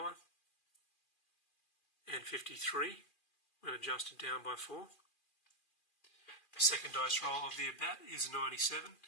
and 53 when adjusted down by 4. The second dice roll of the at-bat is 97,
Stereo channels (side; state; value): right; late; 2.4 ms